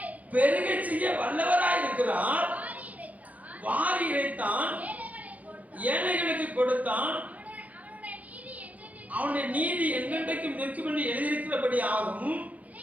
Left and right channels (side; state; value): left; late; 0.073 ms